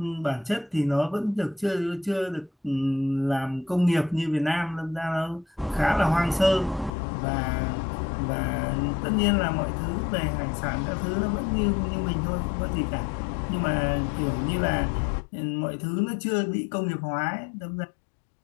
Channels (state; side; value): drops out; right; at 6.9 s